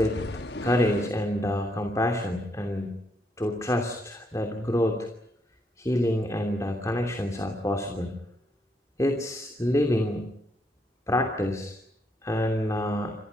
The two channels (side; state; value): both; normal; correlation 0.75